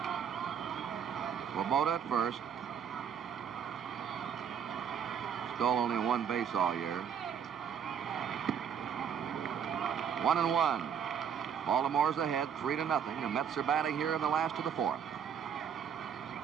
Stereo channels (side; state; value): left; quieter; 7.9 dB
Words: Swoboda at first. Stole only 1 base all year. 1 and 1. Baltimore's ahead 3-0. The Mets are batting here in the last of the 4th.